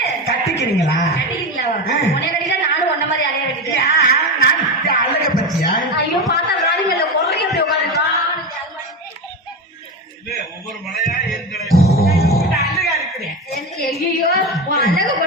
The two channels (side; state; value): both; normal; correlation 0.20